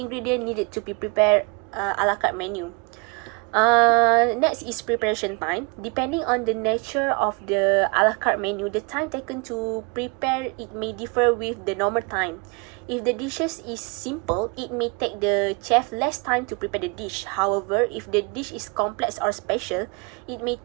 needed to be prepared a la carte menu. Next is preparation time. Depending on the nature of the a la carte menu, the time taken to prepare it may differ with the normal time. If the dishes is simple, it may take the chef less time to prepare the dish. However, if the dish is complex or special, it may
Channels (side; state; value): left; quieter; 31.4 dB